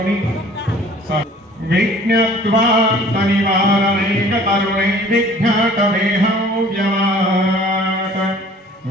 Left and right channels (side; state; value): both; normal; correlation 0.51